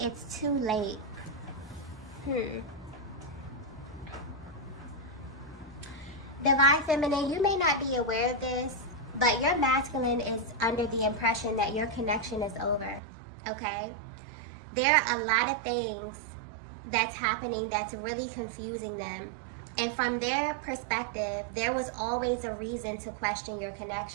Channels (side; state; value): left; drops out; at 13.0 s